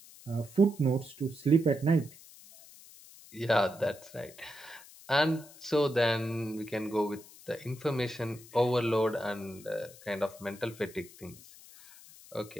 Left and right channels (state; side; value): noise; left; hiss, 20 dB below the sound